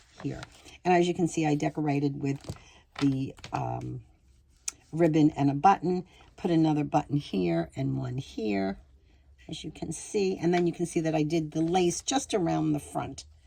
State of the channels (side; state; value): both; identical; correlation 1.00